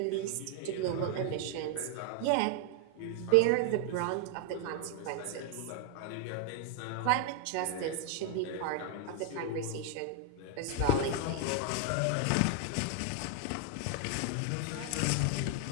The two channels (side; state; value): both; different; correlation 0.00